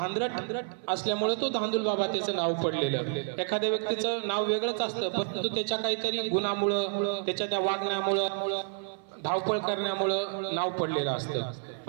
असल्यामुळे तो धांदूल बाबा त्याचं नाव पडलेलं. एखाद्या व्यक्तीचं नाव वेगळंच असतं, परंतु त्याच्या काहीतरी गुणामुळं, त्याच्या त्या वागण्यामुळं, धावपळ करण्यामुळं नाव पडलेलं असतं.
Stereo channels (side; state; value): left; silent; 55 dB below the other